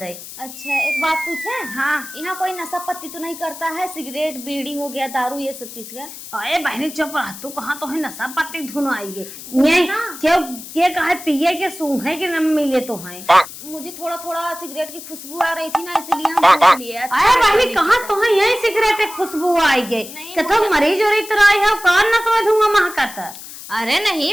अच्छा एक बात पूछे? हाँ। यहाँ कोई नशा पत्ती तो नहीं करता है? सिगरेट बीड़ी हो गया, दारू, ये सब चीज का? अरे बहनी चुप रह, तू कहाँ तो है नशा पत्ती धुन आई है ये क्यों के कहे पिए के सूंघे के न मिले तो है। मुझे थोड़ा थोड़ा सिगरेट की खुशबू आ रही थी ना, इसलिए हम पूछ लिए। अरे बहनी कहाँ तो है यही सिगरेट खुशबू आई गई, कथो मरीज और इतना आई है कान न समझ दूंगा महकता। अरे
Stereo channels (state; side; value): noise; left; hiss, 13 dB below the sound